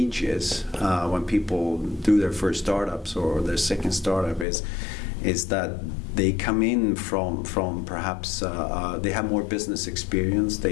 when people do their first startups or their second startup is that they come in from perhaps they have more business experience.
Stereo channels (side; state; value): right; drops out; at 4.5 s